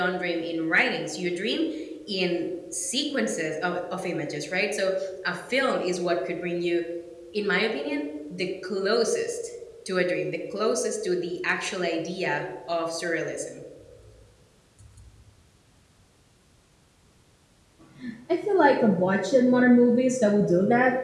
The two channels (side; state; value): both; identical; correlation 1.00